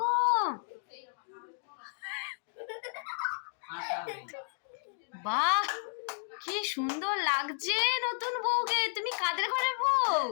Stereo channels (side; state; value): right; silent; digital silence